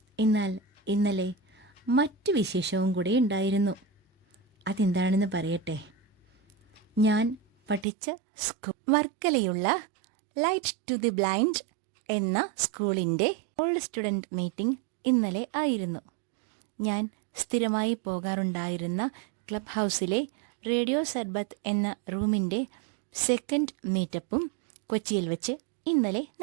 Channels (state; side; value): drops out; left; at 7.9 s